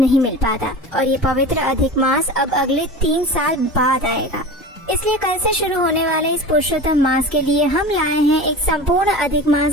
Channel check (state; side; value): normal; both; correlation 0.33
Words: मिल पाता। और ये पवित्र अधिक मास अब अगले 3 साल बाद आएगा। इसलिए कल से शुरू होने वाले इस पुरुषोत्तम मास के लिए हम लाए हैं एक संपूर्ण अधिक